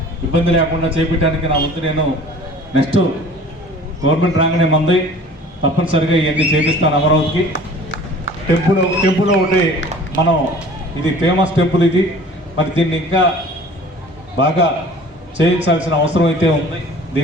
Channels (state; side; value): normal; both; correlation 0.46